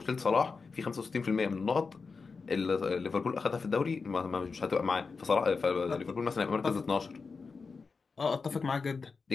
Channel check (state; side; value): quieter; right; 4.7 dB